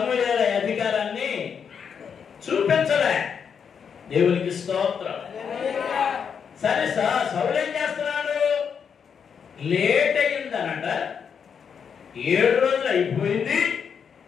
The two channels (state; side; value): quieter; right; 6.9 dB